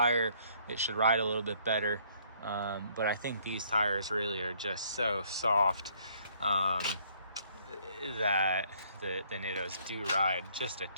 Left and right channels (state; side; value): inverted; both; correlation -0.64